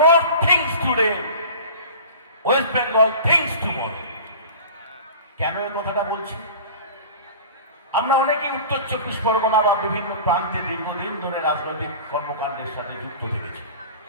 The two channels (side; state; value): both; inverted; correlation -0.38